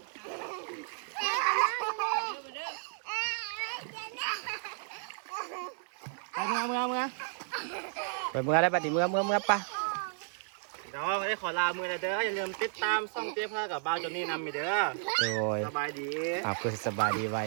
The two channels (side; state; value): left; silent; digital silence